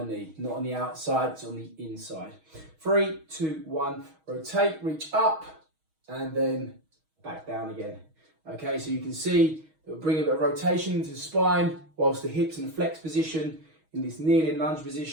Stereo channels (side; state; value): left; late; 6.3 ms